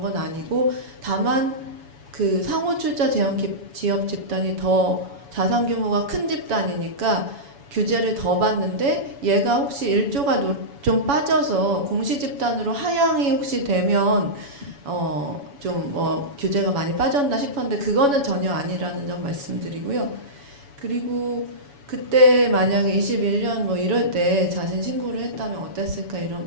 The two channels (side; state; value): left; late; 7.1 ms